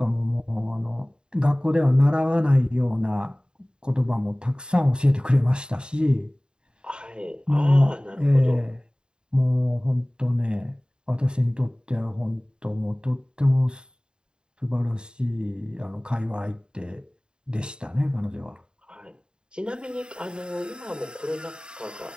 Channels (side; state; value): left; late; 0.049 ms